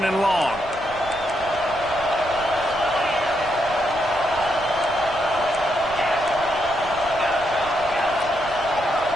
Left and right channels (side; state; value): right; noise; rumble, 16 dB below the sound